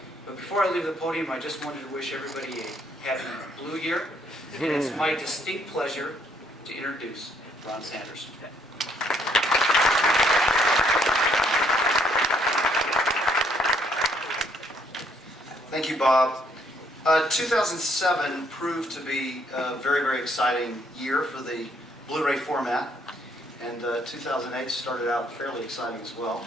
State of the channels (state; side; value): normal; both; correlation 0.68